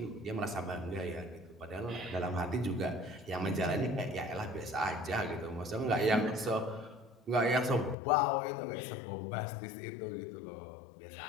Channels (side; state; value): right; drops out; at 8.0 s